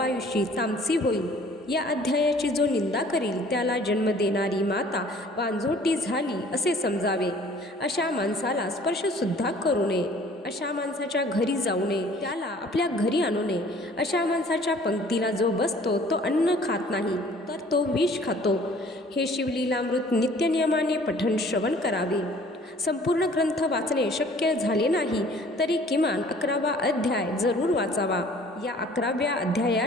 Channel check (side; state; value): both; normal; correlation 0.53